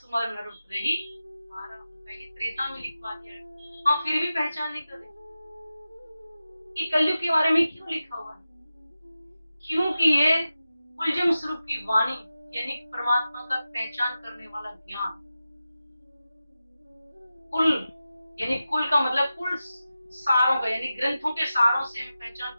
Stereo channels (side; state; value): both; inverted; correlation -0.93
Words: नर उतरहि पारा। ये त्रेता में लिखवा दिया है, हम फिर भी पहचान नहीं कर रहे कि कलयुग के बारे में क्यों लिखा हुआ है। क्योंकि ये कुलजम स्वरूप की वाणी, यानी परमात्मा का पहचान करने वाला ज्ञान। कुल यानी कुल का मतलब कुल सारों का, यानी ग्रंथों के सारों से हमें पहचान